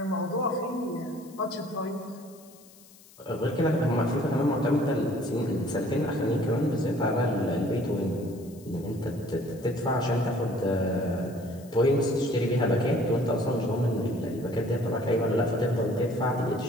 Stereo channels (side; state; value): left; noise; hiss, 24 dB below the sound